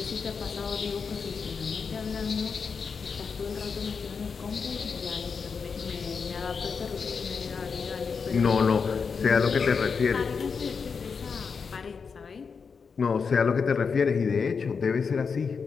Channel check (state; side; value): quieter; right; 5.6 dB